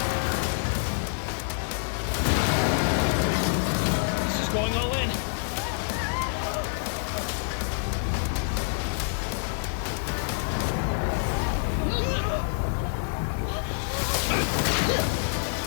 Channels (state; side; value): silent; right; digital silence